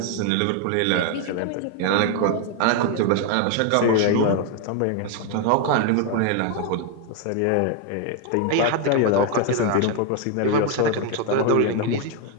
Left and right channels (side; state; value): both; different; correlation 0.01